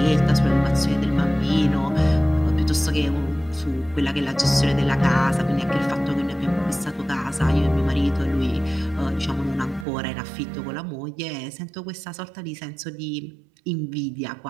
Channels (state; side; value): drops out; left; at 9.9 s